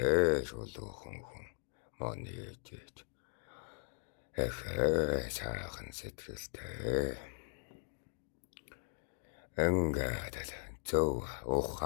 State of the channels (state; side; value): silent; right; digital silence